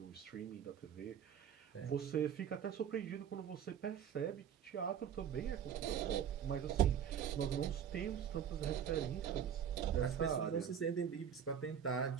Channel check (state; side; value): quieter; left; 8.6 dB